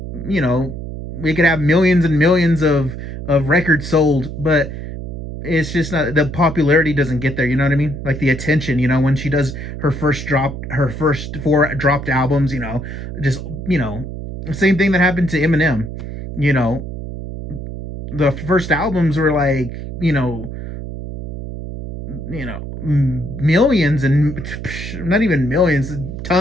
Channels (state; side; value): noise; right; hum, 8 dB below the sound